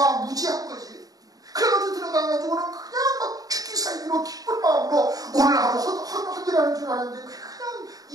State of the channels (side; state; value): left; late; 0.18 ms